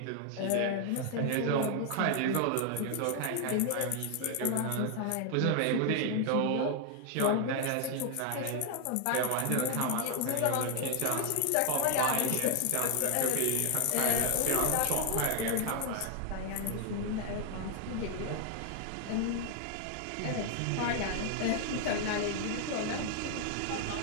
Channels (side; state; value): both; different; correlation 0.00